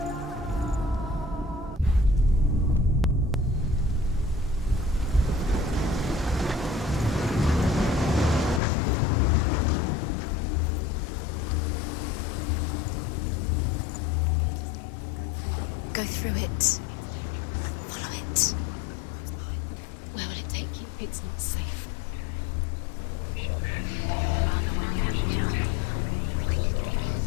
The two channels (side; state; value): right; drops out; at 8.6 s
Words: Go through it. It's dangerous. Follow it. What's behind the gate? Where will it take you? It's not safe.